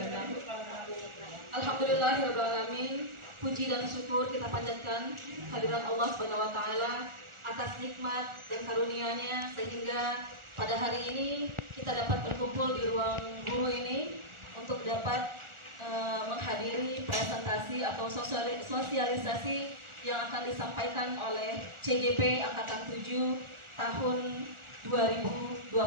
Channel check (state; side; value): late; left; 1.4 ms